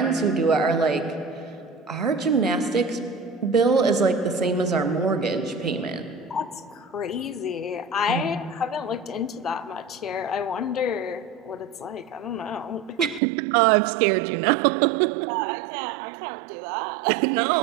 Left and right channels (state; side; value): drops out; left; at 13.2 s